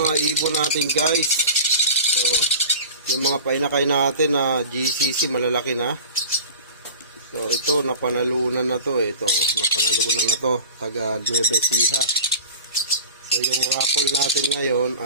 mga ibon natin guys. So, yung mga painakay natin na GCC malalaki na. So, ito napanalunan na to eh. Ito, napanalunan na to. Taga Nueva Ecija. So, yung raffle natin ngayon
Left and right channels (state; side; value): inverted; both; correlation -0.37